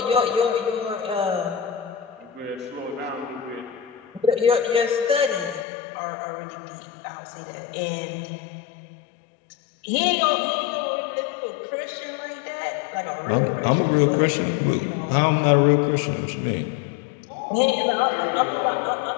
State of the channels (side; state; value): right; drops out; at 5.7 s